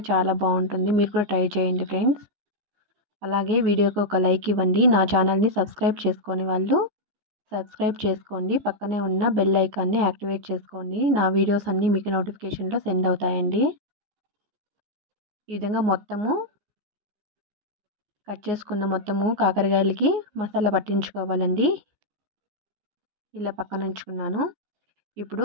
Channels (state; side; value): late; left; 14 ms